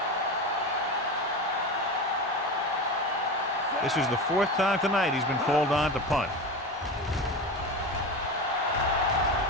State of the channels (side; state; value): both; normal; correlation 0.25